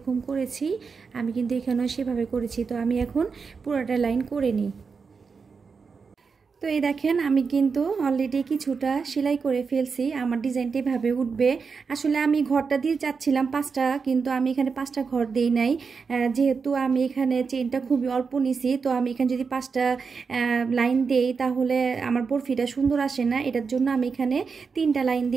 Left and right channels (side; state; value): left; quieter; 5.3 dB